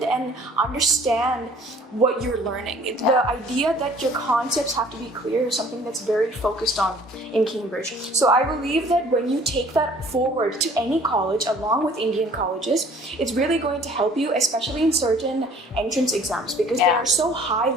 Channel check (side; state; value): both; normal; correlation 0.53